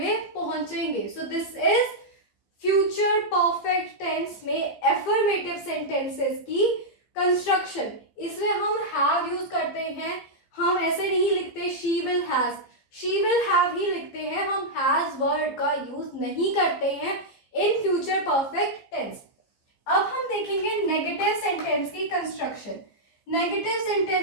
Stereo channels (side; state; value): right; late; 15 ms